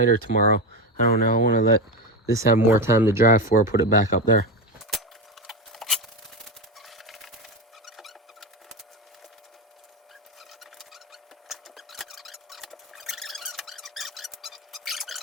or tomorrow. I don't know. I want to let this have more time to dry before I put it back up there.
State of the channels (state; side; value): normal; both; correlation 0.17